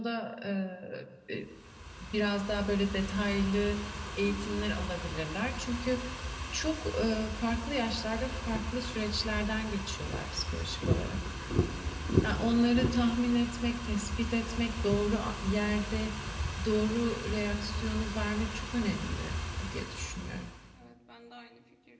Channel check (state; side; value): identical; both; correlation 1.00